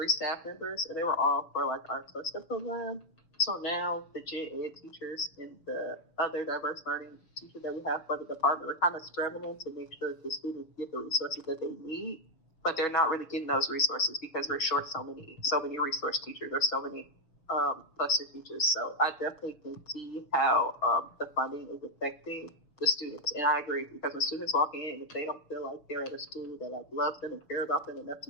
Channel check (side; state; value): right; late; 6.6 ms